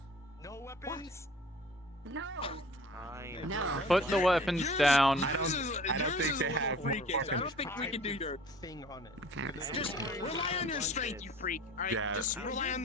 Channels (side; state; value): both; normal; correlation 0.46